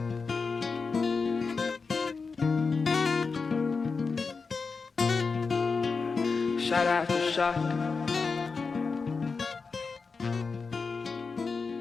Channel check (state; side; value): quieter; right; 4.7 dB